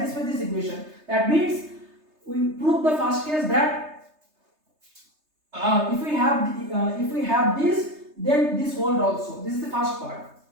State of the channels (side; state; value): left; late; 3.3 ms